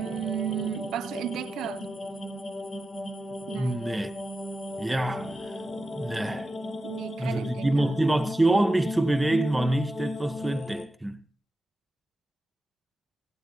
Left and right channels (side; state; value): both; normal; correlation 0.91